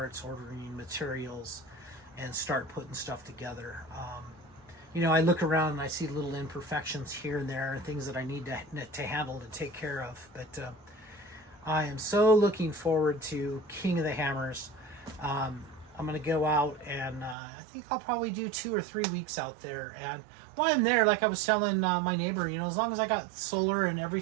ordering materials, and start putting stuff together. I look around and I see little imperfections here and there, and things that I need to handle and take care of. But I am so looking forward to King of the Hammers. I'm going to go out, and I think I'll probably do 2 or 3 weeks out there. And while I'm there, like I was telling my neighbor, as long as I got solar and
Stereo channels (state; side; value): drops out; left; at 17.4 s